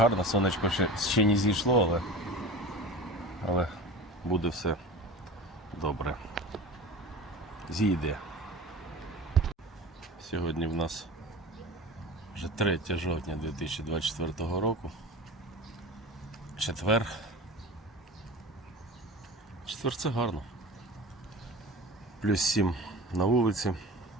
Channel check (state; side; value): normal; both; correlation 0.34